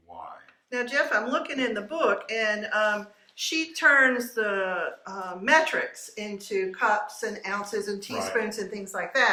Now, Jeff, I'm looking in the book, and she turns the metrics into cups and ounces and teaspoons and things like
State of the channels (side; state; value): both; identical; correlation 1.00